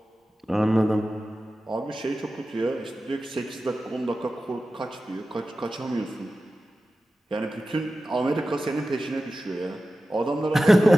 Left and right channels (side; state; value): both; normal; correlation 0.94